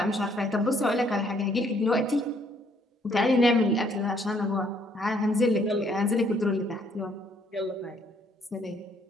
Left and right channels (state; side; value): normal; both; correlation 0.66